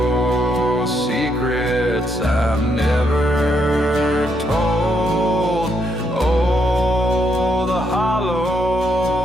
secrets I've never told. Oh, the hollow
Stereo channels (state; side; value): normal; both; correlation 0.76